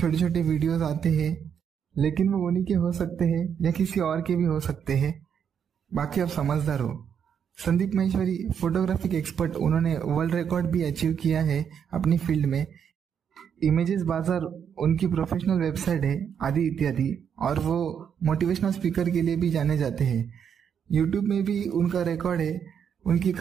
छोटे वीडियोस आते हैं, लेकिन वो उन्हीं के हो सकते हैं या किसी और के भी हो सकते हैं। बाकी आप समझदार हो। संदीप माहेश्वरी, फोटोग्राफिक एक्सपर्ट, उन्होंने वर्ल्ड रिकॉर्ड भी अचीव किया है अपनी फील्ड में। इमेजेस बाजार उनकी प्रोफेशनल वेबसाइट है, आदि इत्यादि। और वो मोटिवेशनल स्पीकर के लिए भी जाने जाते हैं। यूट्यूब में भी उनका रिकॉर्ड है। उनकी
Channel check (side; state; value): left; quieter; 7.9 dB